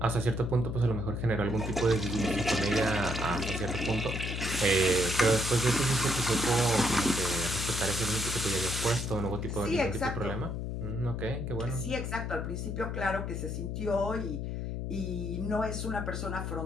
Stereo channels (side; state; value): left; noise; hum, 3 dB below the sound